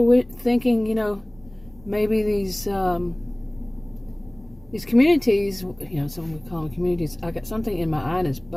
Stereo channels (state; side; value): noise; right; rumble, 24 dB below the sound